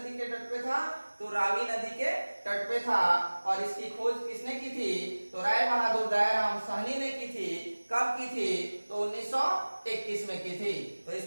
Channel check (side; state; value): both; inverted; correlation -1.00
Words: के तट पे था? तो रावी नदी के तट पे था। और इसकी खोज किसने की थी? तो राय बहादुर दयाराम साहनी ने की थी। कब की थी? तो 1921 में की थी। तो